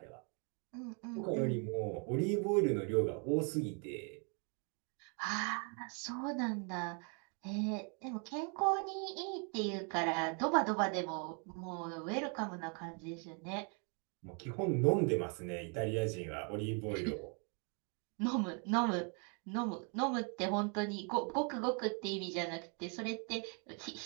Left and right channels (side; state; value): left; quieter; 38.1 dB